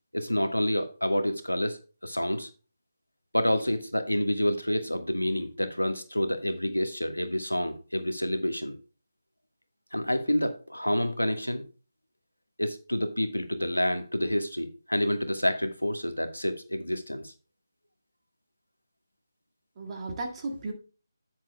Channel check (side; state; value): both; inverted; correlation -0.98